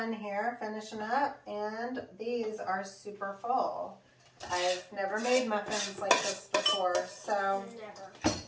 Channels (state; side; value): identical; both; correlation 1.00